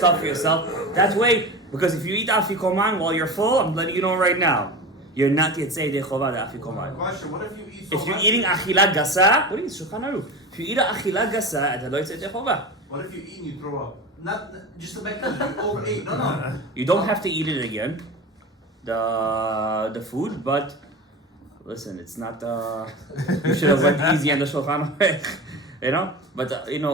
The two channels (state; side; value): normal; both; correlation 0.29